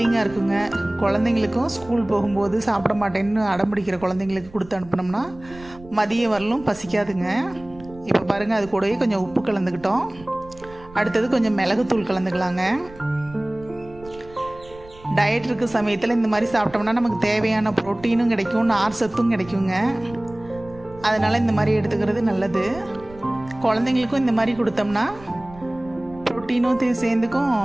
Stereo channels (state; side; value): noise; right; rumble, 20 dB below the sound